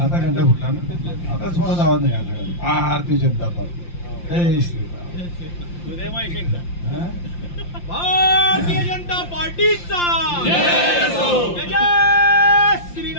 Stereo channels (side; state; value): right; late; 5.8 ms